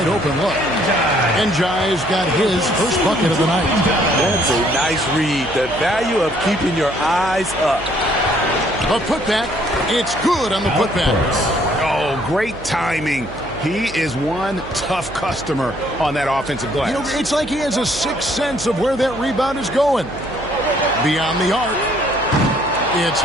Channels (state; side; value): noise; right; hum, 15 dB below the sound